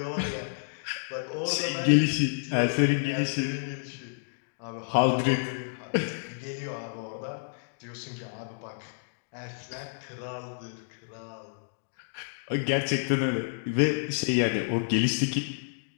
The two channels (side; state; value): right; silent; digital silence